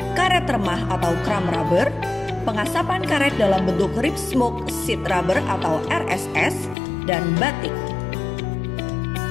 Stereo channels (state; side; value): drops out; right; at 6.8 s